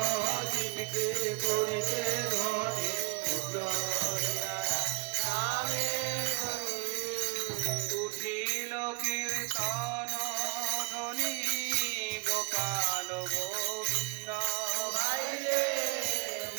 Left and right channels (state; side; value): quieter; left; 26.3 dB